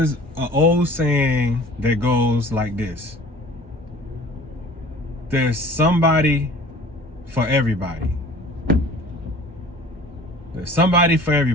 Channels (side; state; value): both; normal; correlation 0.46